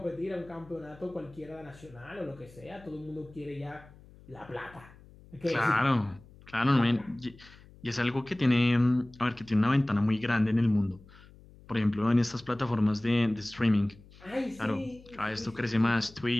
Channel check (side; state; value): left; noise; hum, 23 dB below the sound